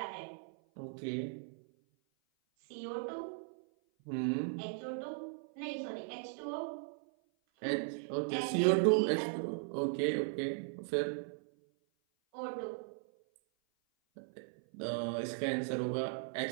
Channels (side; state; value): left; silent; 53 dB below the other